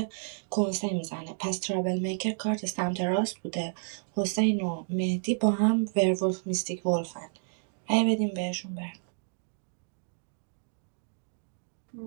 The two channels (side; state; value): left; silent; digital silence